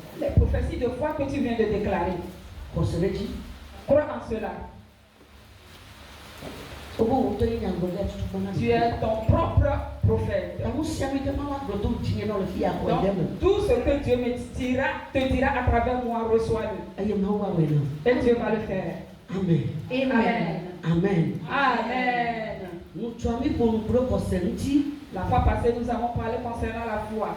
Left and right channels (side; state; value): both; identical; correlation 1.00